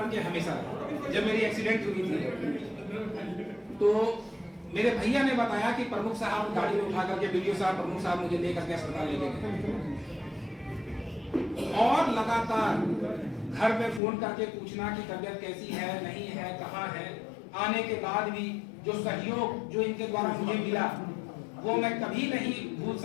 के हमेशा रहे। जब मेरी एक्सीडेंट हुई थी तो मेरे भैया ने बताया कि प्रमुख साहब गाड़ी में उठा करके वीडियो साहब, प्रमुख साहब मुझे लेकर के अस्पताल ले गए, और लगातार घर में फोन करके पूछना कि तबीयत कैसी है, नहीं है, कहाँ है। आने के बाद भी जो सहयोग जो इनके द्वारा मुझे मिला वो मैं कभी नहीं भूल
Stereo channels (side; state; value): right; drops out; at 14.0 s